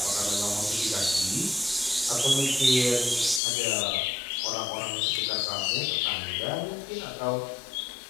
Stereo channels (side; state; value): right; drops out; at 3.4 s